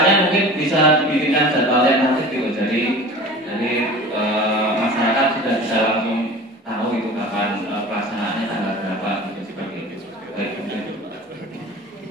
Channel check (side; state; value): both; normal; correlation 0.39